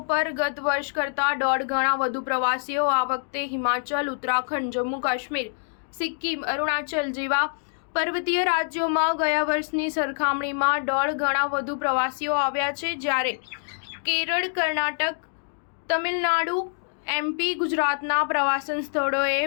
પર ગત વર્ષ કરતાં 1.5 ગણા વધુ પ્રવાસીઓ આ વખતે હિમાચલ, ઉત્તરાખંડ, જમ્મુ કાશ્મીર, સિક્કિમ, અરુણાચલ જેવા પર્વતીય રાજ્યોમાં ગયા વર્ષની સરખામણીમાં 1.5 ગણા વધુ પ્રવાસીઓ આવ્યા છે, જ્યારે કેરળ, કર્ણાટક, તમિલનાડુ, એમપી, ગુજરાતના પ્રવાસન સ્થળોએ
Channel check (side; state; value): right; silent; digital silence